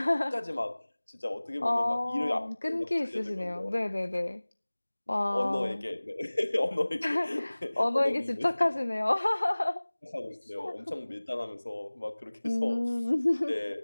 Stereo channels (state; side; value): inverted; both; correlation -1.00